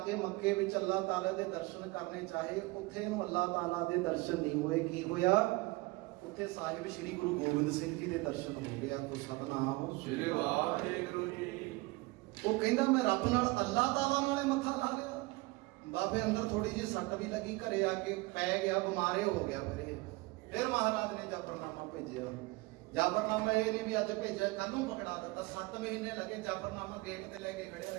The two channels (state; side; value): quieter; left; 22.8 dB